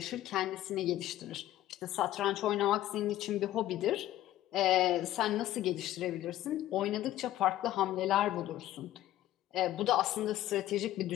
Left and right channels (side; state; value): right; quieter; 14.0 dB